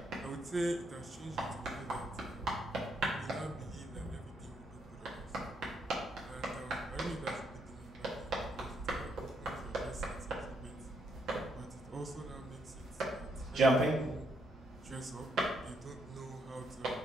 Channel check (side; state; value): both; normal; correlation 0.75